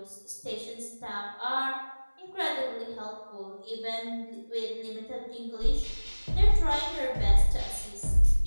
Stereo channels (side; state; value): both; inverted; correlation -1.00